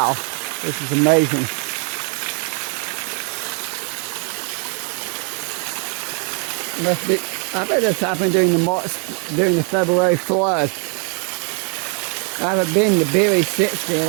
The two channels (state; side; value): quieter; left; 39.1 dB